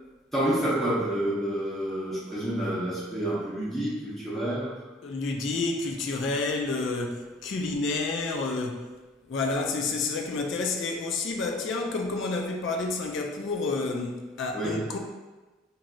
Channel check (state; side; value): normal; both; correlation 0.51